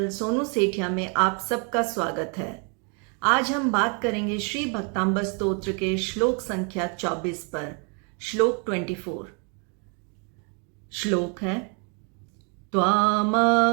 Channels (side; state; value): left; quieter; 37.1 dB